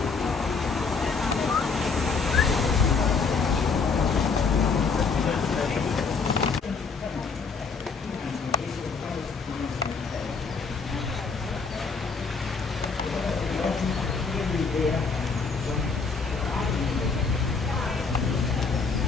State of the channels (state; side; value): quieter; right; 4.9 dB